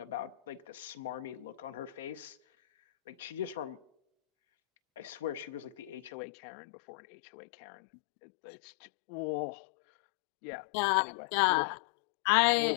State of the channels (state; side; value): drops out; right; at 6.1 s